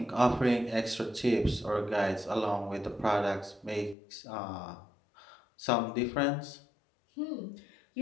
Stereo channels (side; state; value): right; drops out; at 4.0 s